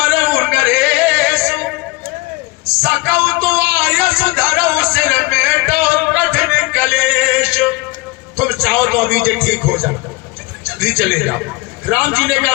नरेश, सकौ तो आयस धरो सिर में तो कठिन कलेश। तुम चाहो तो अभी ये ठीक हो जाओ, जल्दी चले जाओ। राम जी ने कहा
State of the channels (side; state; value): right; quieter; 23.3 dB